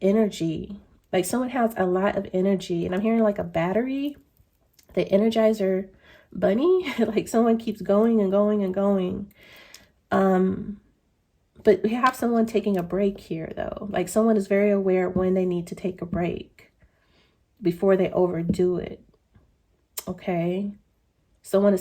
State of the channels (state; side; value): identical; both; correlation 1.00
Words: energy. Like someone has a lot of energy, and I'm hearing like a battery, the Energizer bunny. Like someone keeps going and going and going. But we have someone taking a break here though. Like someone is very aware when they need to take a break before they overdo it. Okay, someone